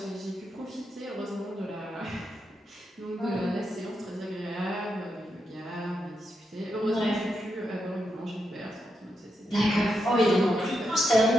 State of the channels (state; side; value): normal; both; correlation 0.84